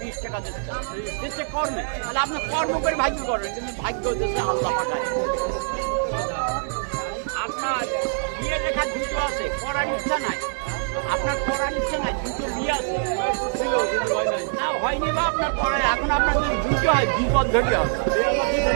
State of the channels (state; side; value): silent; left; 60 dB below the other